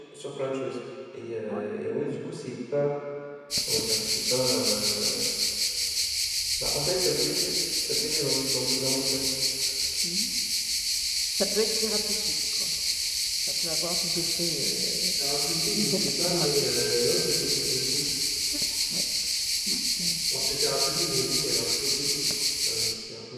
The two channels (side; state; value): both; identical; correlation 1.00